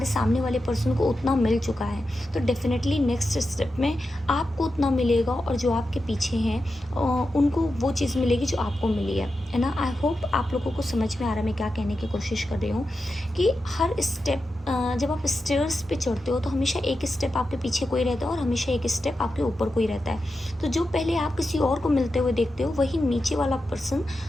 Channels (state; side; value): normal; both; correlation 0.90